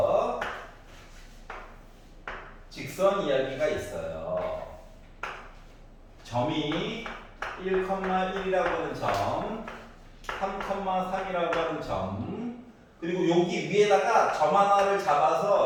직선 이야기가 있어요. 점이 1,1이라고 하는 점, 3,3이라고 하는 점, 그리고 여기 위에다가 점 하나를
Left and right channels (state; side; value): identical; both; correlation 1.00